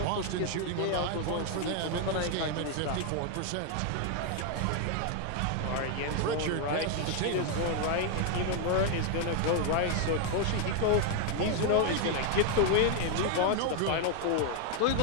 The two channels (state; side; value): different; both; correlation 0.00